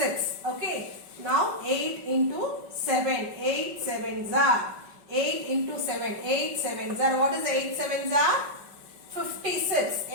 Okay. Now 8 into 7. 8 7s are. 8 into 7. 8 7s are. What is 8 7s are? 56.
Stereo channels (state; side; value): late; left; 5.3 ms